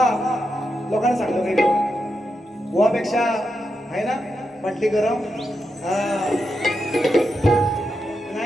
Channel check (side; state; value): both; normal; correlation 0.86